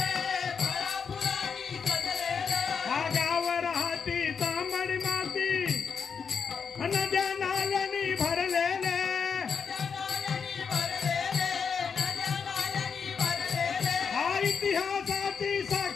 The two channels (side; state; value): right; quieter; 6.2 dB